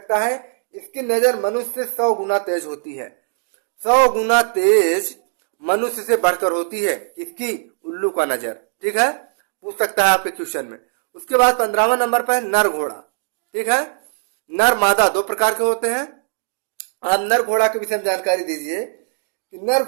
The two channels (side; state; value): left; silent; digital silence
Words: है। इसकी नजर मनुष्य से 100 गुना तेज होती है। 100 गुना तेज मनुष्य से बढ़कर होती है। इसकी? उल्लू का नजर। ठीक है, पूछ सकता है आपके क्वेश्चन में। उसके बाद 15वां नंबर पर है नर घोड़ा। ठीक है, नर मादा 2 प्रकार के होते हैं। आप नर घोड़ा के विषय में जानकारी दीजिए कि नर